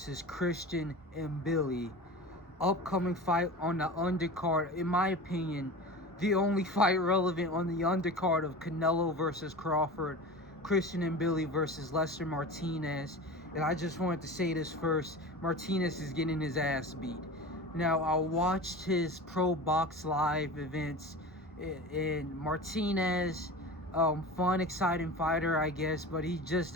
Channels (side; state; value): both; normal; correlation 0.32